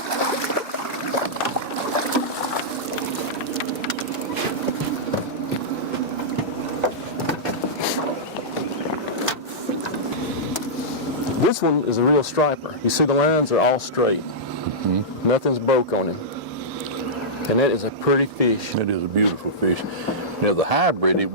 This one is a real striper. You see the lines are all straight. Mm-hmm. Nothing's broke on him. And that is a pretty fish. It is a beautiful fish. Now the hybrid, it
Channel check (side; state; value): both; normal; correlation -0.13